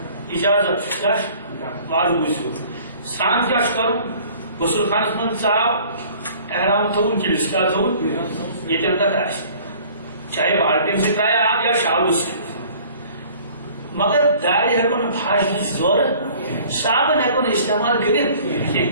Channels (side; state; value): both; inverted; correlation -0.51